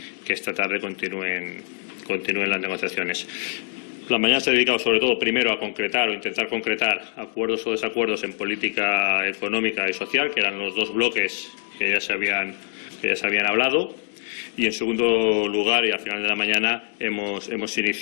esta tarde continúen las negociaciones. La mañana se ha dedicado sobre todo primero a concretar o intentar concretar acuerdos o desacuerdos en política económica y social, que eran los dos bloques que ya se habían hablado. Y en segundo lugar, y al final de la mañana, hemos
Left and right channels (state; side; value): silent; right; 63 dB below the other